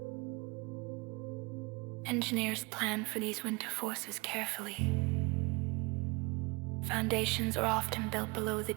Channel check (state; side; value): quieter; left; 26.6 dB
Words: Engineers plan for these winter forces carefully. Foundations are often built below the